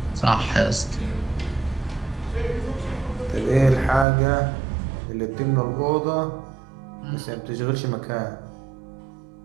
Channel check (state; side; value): drops out; left; at 4.0 s